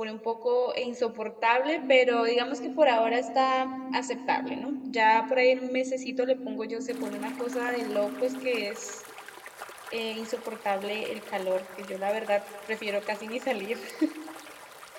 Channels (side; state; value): both; identical; correlation 1.00